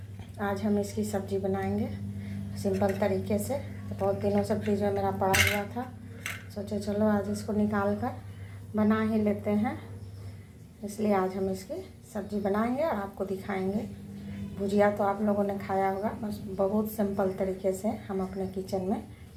आज हम इसकी सब्ज़ी बनाएंगे सिंपल तरीके से। तो बहुत दिनों से फ्रिज में मेरा पड़ा हुआ था, सोचे चलो आज इसको निकाल कर बना ही लेते हैं। इसलिए आज हम इसकी सब्ज़ी बनाएंगे और आपको दिखाएंगे। भुजिया तो आप लोगों ने खाया होगा, बस बहुत सिंपल तरीके से हम अपने किचन में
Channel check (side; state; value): both; identical; correlation 1.00